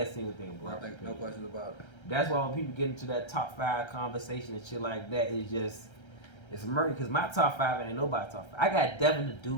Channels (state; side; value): late; right; 1.3 ms